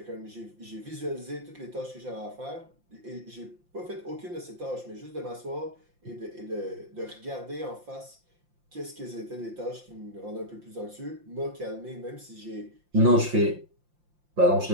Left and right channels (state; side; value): late; left; 5.7 ms